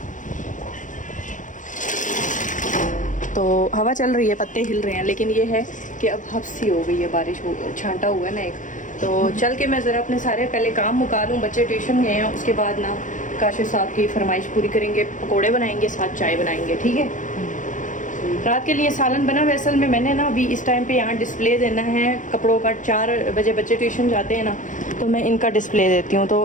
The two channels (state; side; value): late; right; 0.37 ms